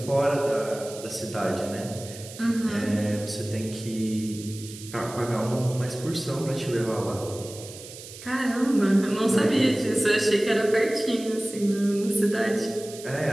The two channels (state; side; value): noise; right; hiss, 15 dB below the sound